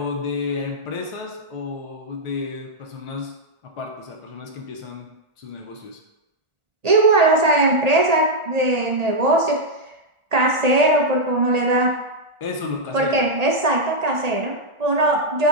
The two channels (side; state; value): left; late; 1.4 ms